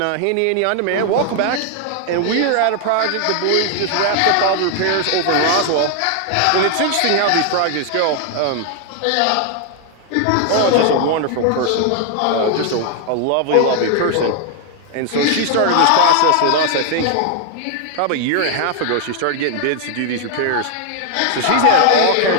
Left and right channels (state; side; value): different; both; correlation 0.00